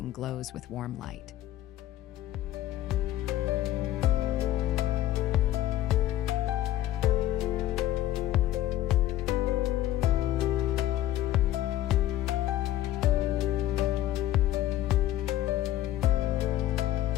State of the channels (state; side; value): quieter; right; 13.6 dB